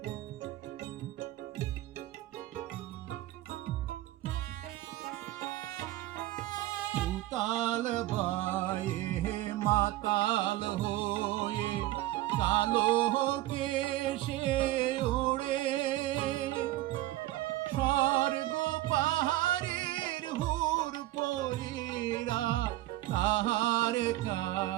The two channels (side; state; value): left; quieter; 16.3 dB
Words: তাল বায়ে মাতাল হয়ে কালো কেশে ওড়ে, স্বর্গ পাহাড়ের হুর পরীরা তাহার